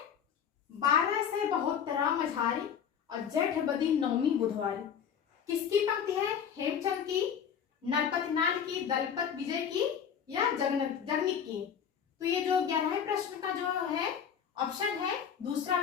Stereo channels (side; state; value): right; quieter; 7.9 dB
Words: 12 से 72 मझारी और जेठ बदी नौमी बुधवारी किसकी पंक्ति है? हेमचंद की, नरपतनाल की, दलपत विजय की या जगनीक की। तो ये जो 11वें प्रश्न का जो है ऑप्शन है दूसरा